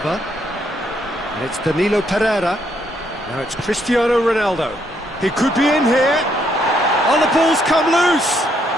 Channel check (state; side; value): normal; both; correlation 0.73